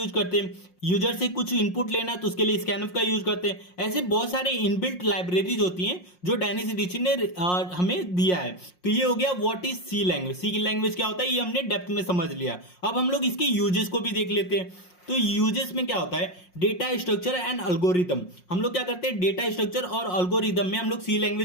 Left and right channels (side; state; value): right; late; 5.6 ms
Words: करते हैं। यूजर से कुछ इनपुट लेना है तो उसके लिए स्कैनफ का यूज करते हैं। ऐसे बहुत सारे इनबिल्ट लाइब्रेरीज होती हैं जो डेनिस रिची ने हमें दिया है। तो ये हो गया what is C language. C language क्या होता है ये हमने डेप्थ में समझ लिया। अब हम लोग इसके यूजेस को भी देख लेते हैं। तो यूजेस में क्या होता है? Data structure and algorithm. हम लोग क्या करते हैं? डेटा स्ट्रक्चर और अल्गोरिदम में हम लोग सी